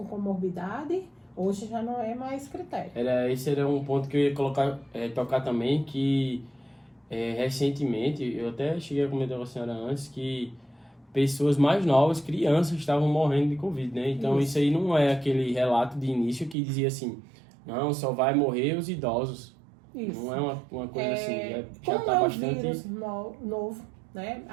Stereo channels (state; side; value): drops out; left; at 16.6 s